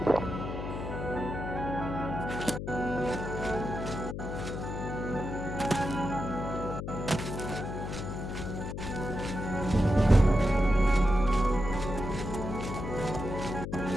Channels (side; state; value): left; noise; hum, 5 dB below the sound